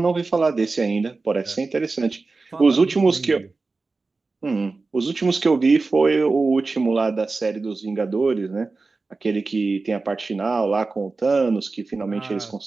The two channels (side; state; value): left; quieter; 3.8 dB